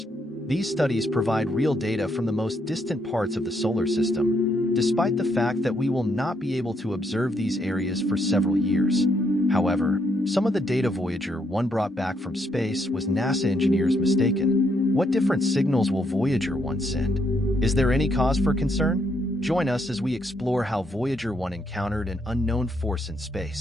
These studies provide real data from the most distant parts of the solar system, despite the fact that we will not be able to observe these areas for several years. However, some of the data Voyager 1 brought back from space was NASA engineers mistaken. What different signals will Voyager 1 send? Is there any cause for concern? Join us as we explore how Voyager 1 encountered an unknown force in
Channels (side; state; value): both; normal; correlation 0.75